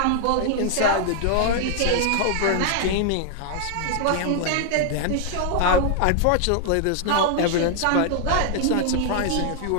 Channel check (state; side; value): different; both; correlation 0.00